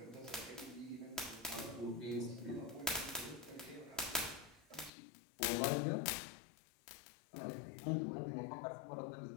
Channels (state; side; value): drops out; right; at 4.9 s